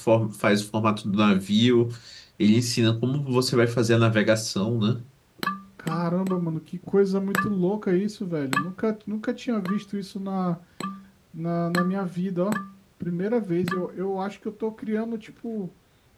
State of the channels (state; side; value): identical; both; correlation 1.00